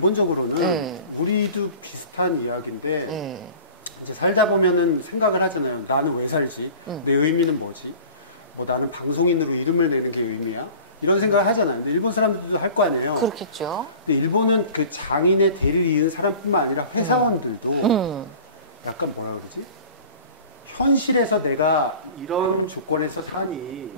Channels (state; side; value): inverted; both; correlation -0.42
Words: 우리도 비슷한 이야기인데 이제 살다 보면은 생각을 하잖아요. 나는 왜 살지? 내 의미는 뭐지? 뭐 나는 방송인으로 이름을 내는 게 의미야? 이런 생각을 하잖아요. 근데 일본 사람들도 할 거 아니에요. 근데 일본은 그 장인의 대를 이은 사람뿐만 아니라 회사원들도 약간 뭐라 그러지? 현실에서 내가 이런 조건에서